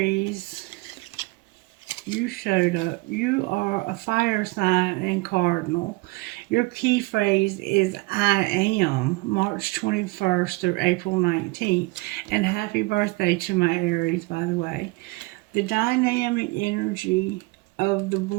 you showed up. You are a fire sign and cardinal. Your key phrase is I am, March 21st through April 19th. And happy birthday to my Aries, by the way. The dynamic energy of the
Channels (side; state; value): left; quieter; 24.1 dB